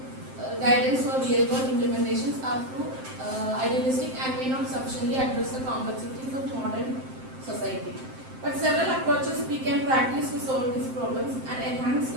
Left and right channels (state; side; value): late; left; 7.7 ms